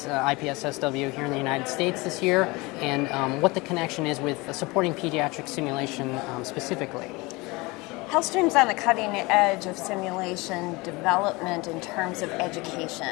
here in the United States this year, and what the connection is with supporting pediatric simulation specifically. HealthStream's on the cutting edge of simulation development in terms of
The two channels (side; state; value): right; quieter; 24.0 dB